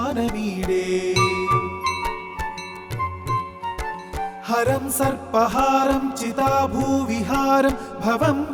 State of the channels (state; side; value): identical; both; correlation 1.00